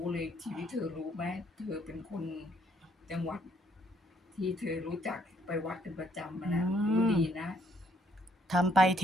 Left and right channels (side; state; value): both; normal; correlation 0.67